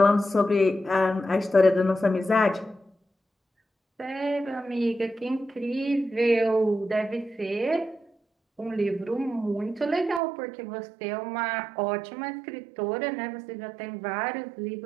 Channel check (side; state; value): left; drops out; at 10.2 s